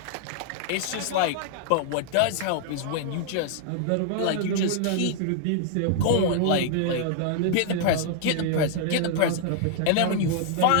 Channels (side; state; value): both; different; correlation -0.01